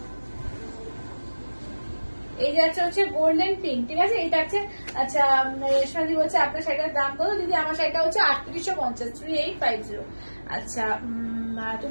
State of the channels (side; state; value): both; inverted; correlation -1.00